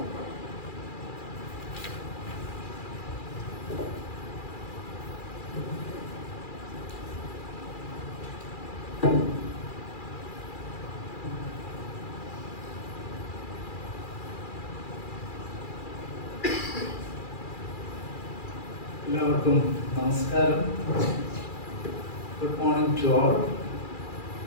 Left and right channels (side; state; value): right; late; 2.4 ms